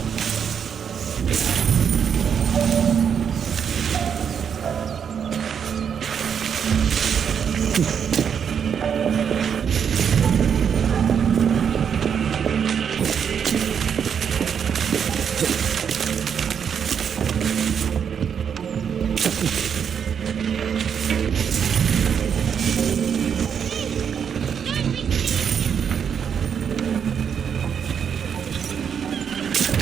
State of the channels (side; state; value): left; quieter; 7.6 dB